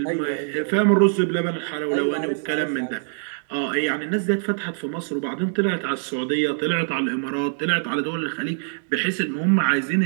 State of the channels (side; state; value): left; silent; digital silence